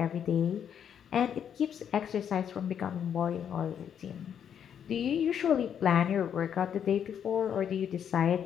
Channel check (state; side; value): quieter; right; 8.6 dB